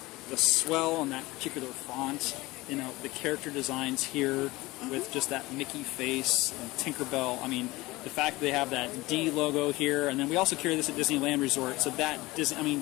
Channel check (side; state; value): right; quieter; 20.5 dB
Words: the swell on that particular font, the character designs here with just that Mickey face and Tinkerbell. I mean, the fact that they have that D logo here, and then we also carry this at Disneyland Resort, so that